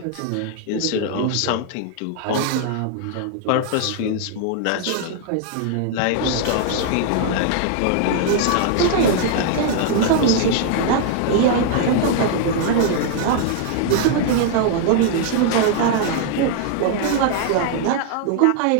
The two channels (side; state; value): both; different; correlation 0.00